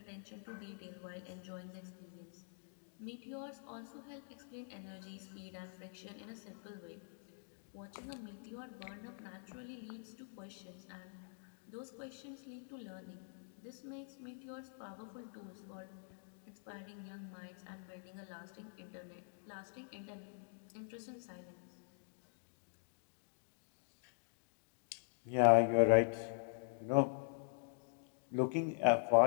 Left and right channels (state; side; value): silent; right; digital silence